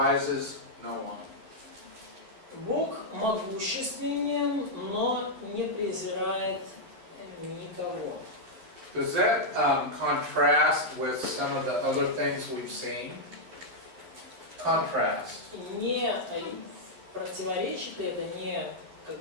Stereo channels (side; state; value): left; late; 11 ms